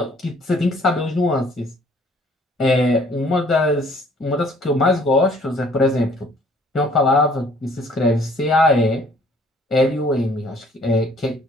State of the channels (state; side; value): normal; both; correlation 0.58